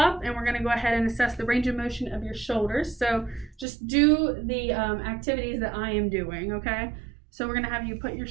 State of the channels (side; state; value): left; drops out; at 3.7 s